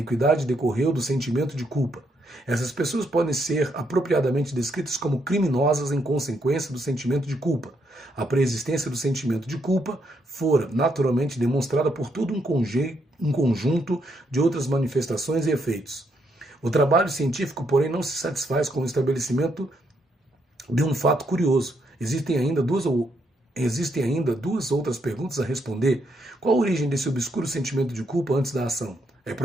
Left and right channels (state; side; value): normal; both; correlation 0.76